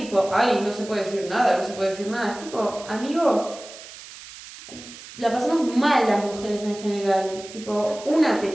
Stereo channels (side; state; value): right; noise; hiss, 16 dB below the sound